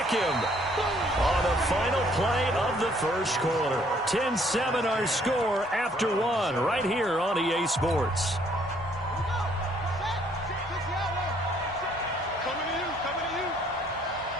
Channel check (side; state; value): both; normal; correlation 0.64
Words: him on the final play of the first quarter. 10-7 our score after 1 right here on EA Sports. Coming to you. Coming to you.